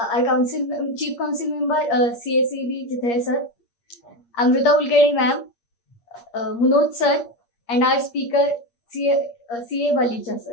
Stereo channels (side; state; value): right; late; 8.6 ms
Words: Chief Council Member CACB Jithay sir, Amrita Ulkedi ma'am, Munoj sir, and our speaker CA Valecha